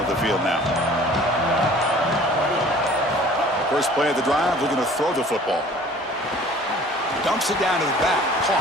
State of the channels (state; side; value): normal; both; correlation 0.49